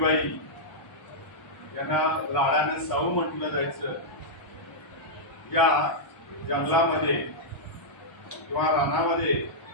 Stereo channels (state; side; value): late; right; 1.1 ms